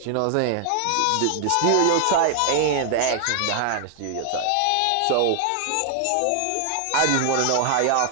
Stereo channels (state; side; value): different; both; correlation 0.00